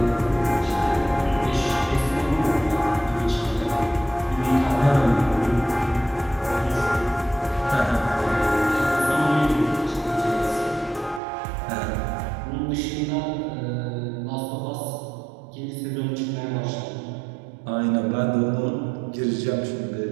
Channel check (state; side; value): drops out; left; at 11.2 s